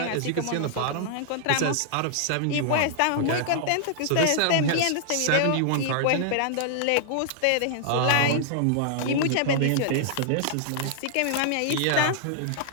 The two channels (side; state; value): both; different; correlation -0.01